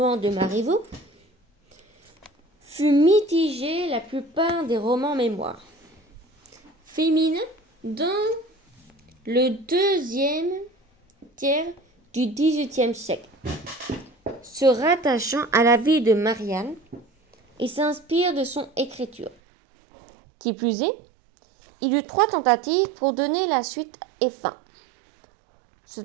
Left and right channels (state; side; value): drops out; left; at 19.4 s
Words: de Marivaux, fut mitigé la plupart des romans mémoires féminins dans le deuxième tiers du XVIIIe siècle, se rattachant à la vie de Marianne et s'inspire de son écriture. Qui plus est, il y eut 3 tentatives pour donner la suite et fin.